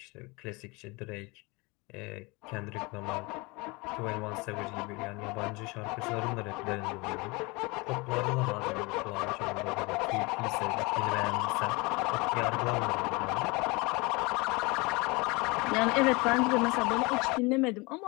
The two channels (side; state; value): right; quieter; 25.9 dB